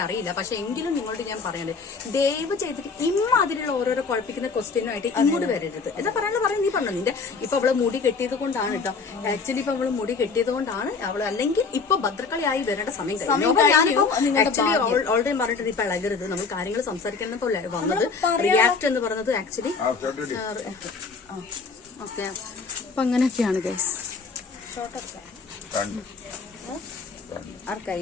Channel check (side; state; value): right; quieter; 4.8 dB